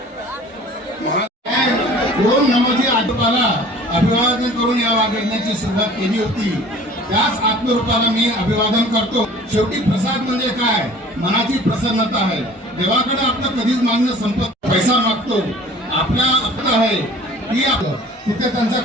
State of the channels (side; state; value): both; normal; correlation 0.47